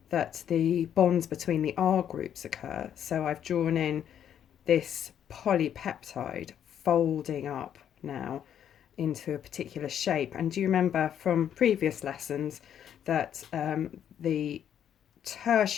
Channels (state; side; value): quieter; right; 9.5 dB